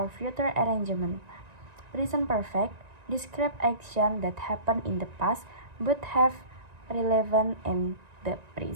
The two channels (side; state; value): left; late; 1.9 ms